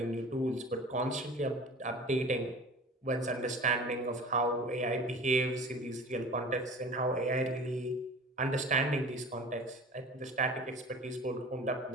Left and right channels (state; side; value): normal; both; correlation 0.40